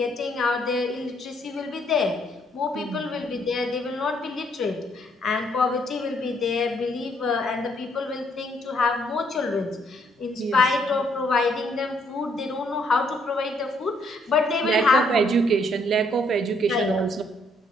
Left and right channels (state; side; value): normal; both; correlation 0.69